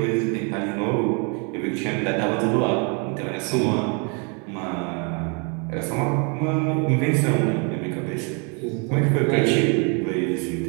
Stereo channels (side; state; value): left; quieter; 35.4 dB